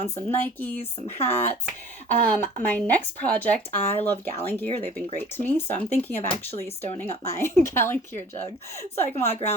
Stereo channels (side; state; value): both; normal; correlation 0.47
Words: some Nikes, some hats. My next project, I love Gallon gear. They've been great to me. So I'm thinking of actually stoning up my Gallon gear jug so I can walk